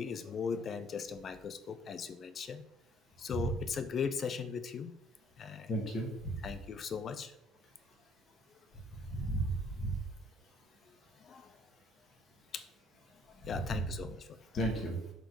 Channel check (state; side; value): normal; both; correlation 0.61